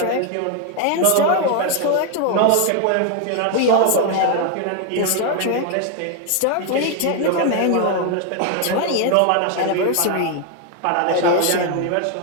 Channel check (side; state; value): both; different; correlation 0.00